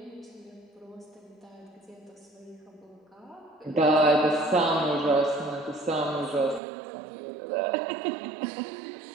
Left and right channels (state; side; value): drops out; left; at 6.6 s